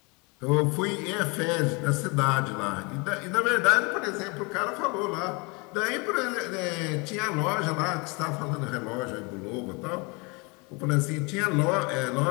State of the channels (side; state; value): right; quieter; 29.2 dB